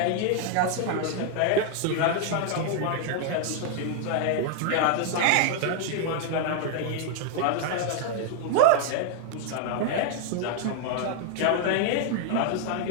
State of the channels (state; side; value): different; both; correlation 0.00